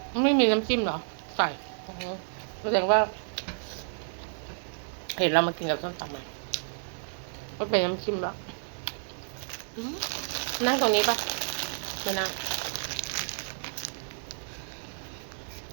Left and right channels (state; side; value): silent; left; digital silence